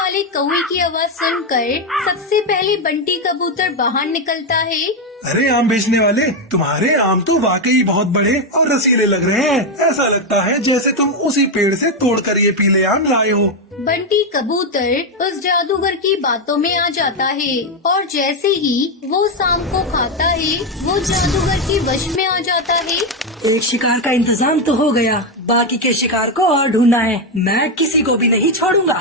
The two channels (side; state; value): both; normal; correlation 0.05